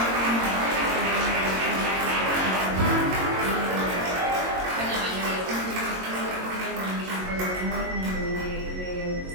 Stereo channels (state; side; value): late; left; 22 ms